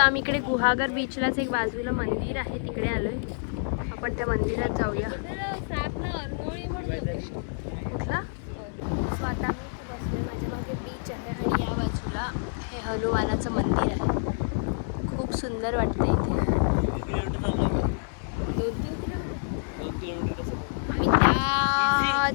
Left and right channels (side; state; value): right; silent; 60 dB below the other